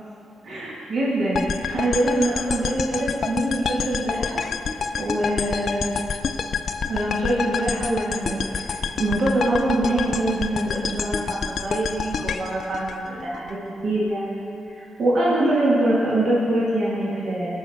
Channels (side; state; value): both; normal; correlation 0.81